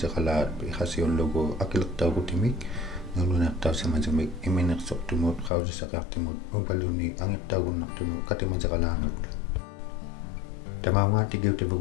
iqasiullugu akilertaugutimik naluneertausimasumik imminersortumut qausisaqiartimut ubaluni angertaugunnartunu katimasiqalaanut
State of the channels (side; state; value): right; drops out; at 5.5 s